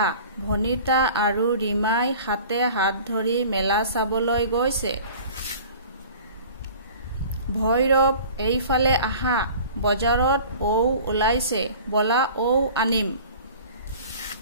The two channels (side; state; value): both; inverted; correlation -0.44